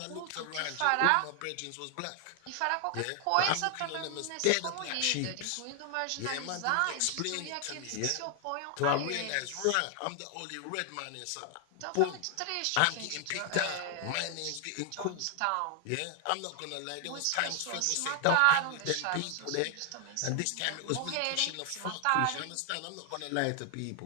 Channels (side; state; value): both; different; correlation 0.00